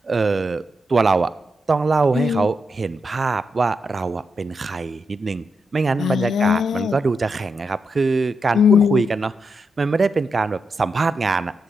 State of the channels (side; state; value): both; normal; correlation 0.84